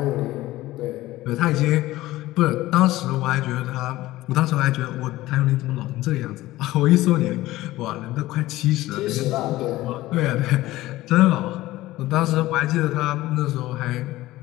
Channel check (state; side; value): quieter; right; 17.0 dB